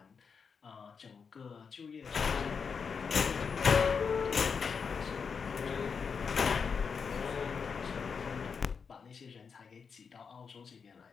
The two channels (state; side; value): quieter; right; 5.9 dB